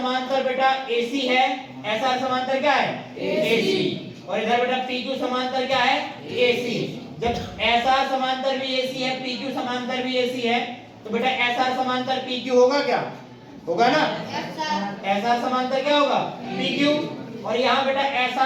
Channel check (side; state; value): both; identical; correlation 1.00